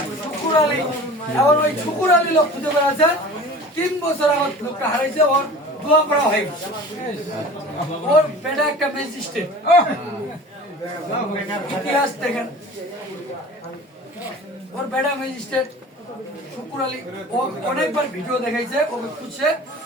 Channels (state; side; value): normal; both; correlation 0.40